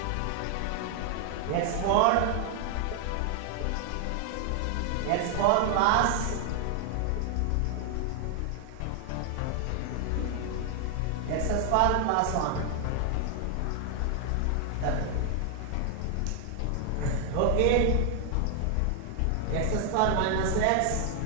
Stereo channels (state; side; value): different; both; correlation 0.00